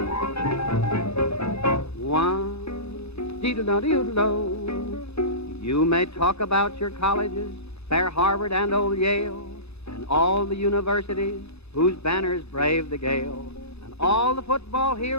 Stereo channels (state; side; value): late; right; 0.79 ms